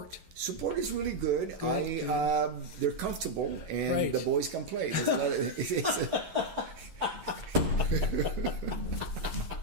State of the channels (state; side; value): late; left; 11 ms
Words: Support is really good. They're comfortable, and the boys can play.